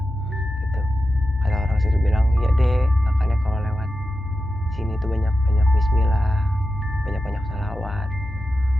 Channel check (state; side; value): normal; both; correlation 0.91